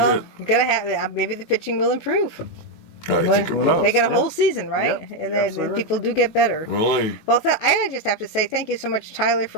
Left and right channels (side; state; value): right; late; 19 ms